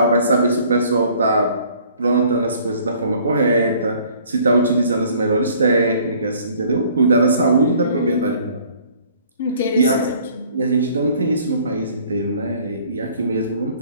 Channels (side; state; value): both; inverted; correlation -0.56